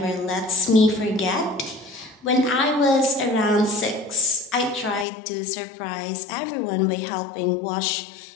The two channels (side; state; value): right; drops out; at 5.1 s